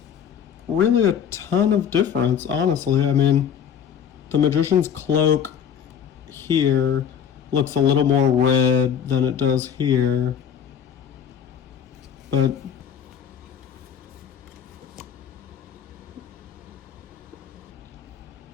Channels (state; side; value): quieter; right; 8.4 dB